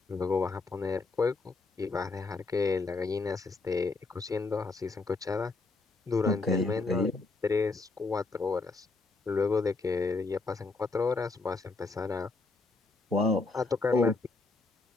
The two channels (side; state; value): right; quieter; 3.7 dB